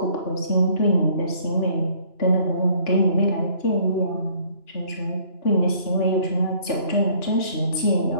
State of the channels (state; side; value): late; right; 2.9 ms